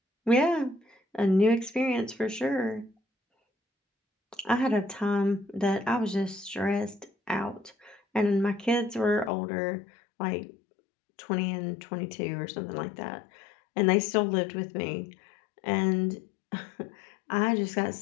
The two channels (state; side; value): drops out; right; at 9.3 s